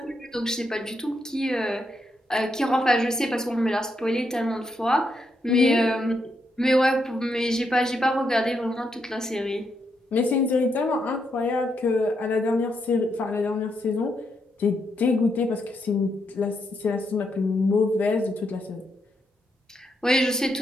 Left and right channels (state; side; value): normal; both; correlation 0.80